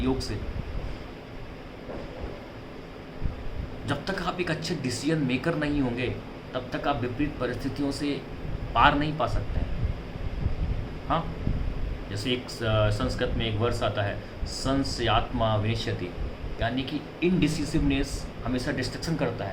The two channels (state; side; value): identical; both; correlation 1.00